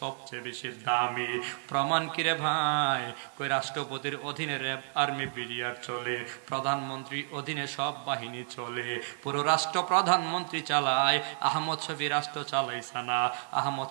সবচেয়ে বেশি দামি। প্রমাণ কিরে ভাই? কই রাষ্ট্রপতির অধীনে র্যাব, আর্মি, বিডিআর চলে, প্রধানমন্ত্রীর অধীনে সব বাহিনী চলে, পুরো রাষ্ট্র প্রধানমন্ত্রী চালায়। আহমদ শফি রাষ্ট্র চালাইছে না, আহমদ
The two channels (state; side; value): silent; left; digital silence